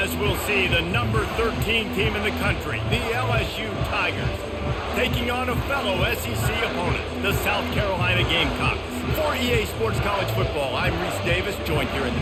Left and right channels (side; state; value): both; identical; correlation 1.00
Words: we'll see, the number 13 team in the country, the LSU Tigers, taking on a fellow SEC opponent, the South Carolina Gamecocks. For EA Sports College Football, I'm Reese Davis, joined here in the